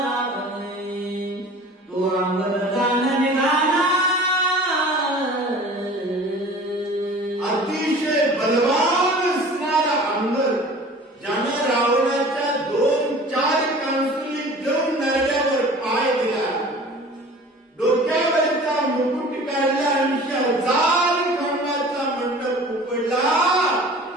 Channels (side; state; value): both; normal; correlation 0.43